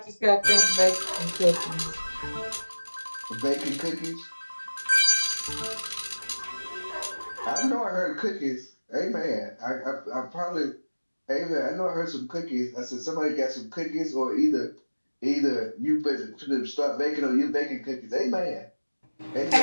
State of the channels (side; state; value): both; inverted; correlation -1.00